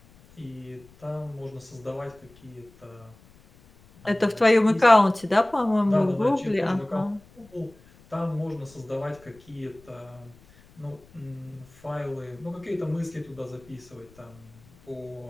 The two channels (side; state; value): left; noise; rumble, 26 dB below the sound